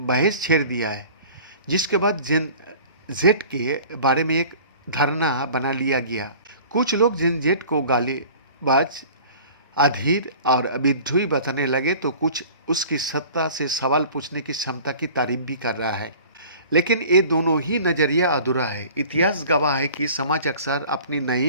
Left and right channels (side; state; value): both; inverted; correlation -0.45